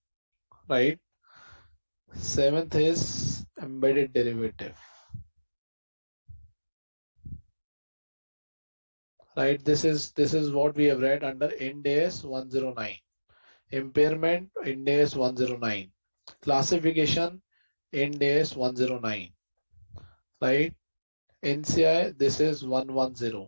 Right? 7th is embedded derivative. Right? This is what we have read under Ind AS 109. Impairment, Ind AS 109. Classification, Ind AS 109. Right? NCI, this is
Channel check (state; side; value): inverted; both; correlation -1.00